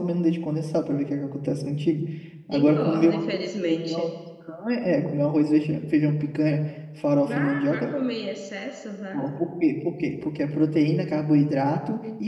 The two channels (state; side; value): identical; both; correlation 1.00